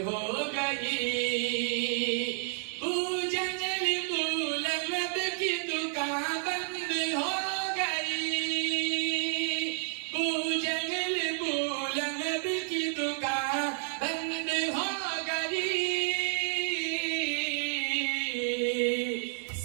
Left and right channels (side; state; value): left; silent; 57 dB below the other